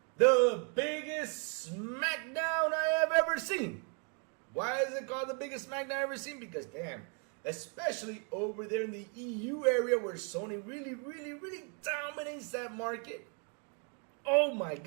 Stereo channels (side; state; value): left; quieter; 39.2 dB